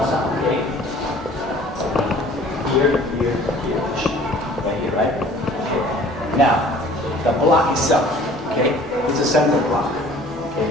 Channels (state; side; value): normal; both; correlation 0.50